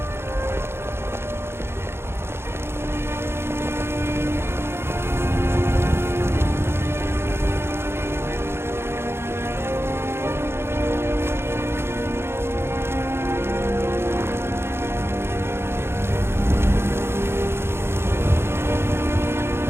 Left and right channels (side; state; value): left; late; 0.12 ms